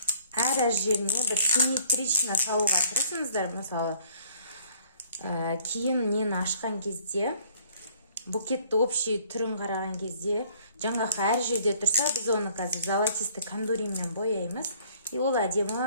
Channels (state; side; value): inverted; both; correlation -0.58